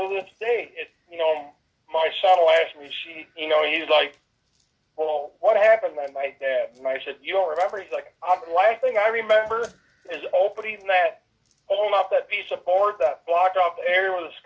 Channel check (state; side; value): identical; both; correlation 1.00